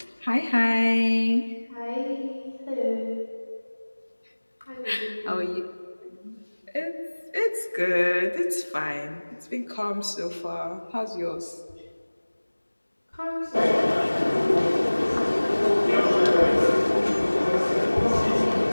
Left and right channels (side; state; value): both; inverted; correlation -1.00